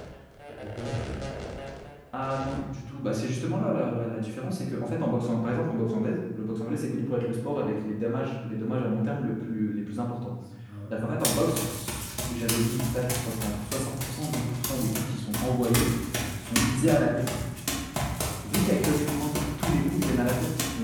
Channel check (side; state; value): both; identical; correlation 1.00